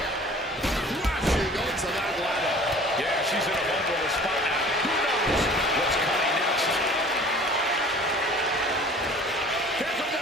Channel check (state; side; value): normal; both; correlation 0.47